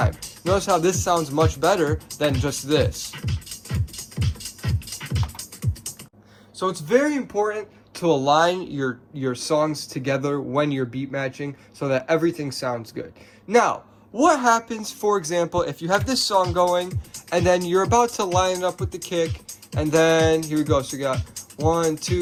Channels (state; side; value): identical; both; correlation 1.00